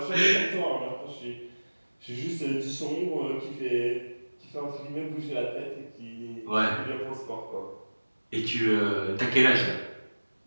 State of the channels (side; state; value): both; inverted; correlation -1.00